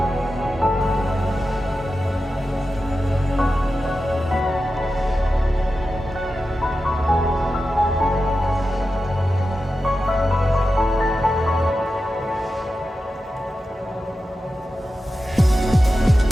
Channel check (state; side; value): normal; both; correlation 0.92